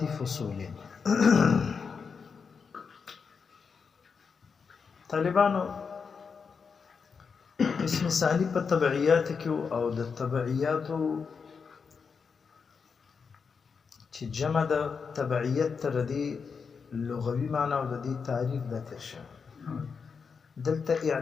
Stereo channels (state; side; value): quieter; right; 5.7 dB